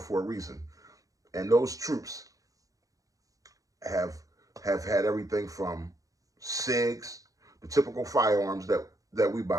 a reason. And those troops have had everything from SIGs, the typical firearms that we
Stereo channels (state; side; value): late; left; 0.17 ms